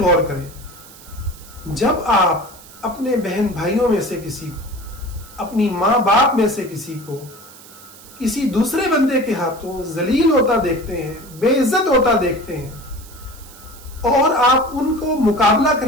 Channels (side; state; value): right; noise; hiss, 20 dB below the sound